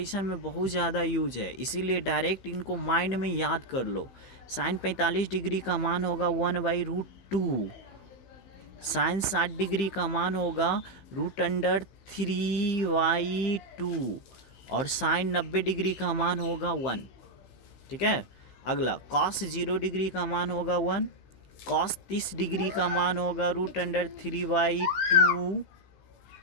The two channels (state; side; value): late; right; 15 ms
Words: में बहुत ज़्यादा यूज है, इसीलिए डायरेक्ट इनको माइंड में याद कर लो। साइन 45 डिग्री का मान होगा 1/√2। साइन 60 डिग्री का मान होगा √3/2। और साइन 90 डिग्री का मान होगा 1, ठीक है। अगला कॉस 0 डिग्री का मान होगा 1। कॉस 30 डिग्री का मान होगा √3/2।